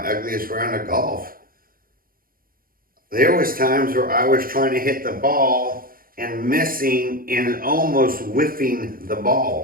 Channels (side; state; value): left; late; 0.42 ms